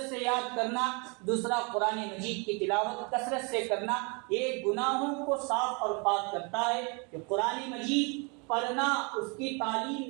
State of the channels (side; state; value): left; quieter; 32.4 dB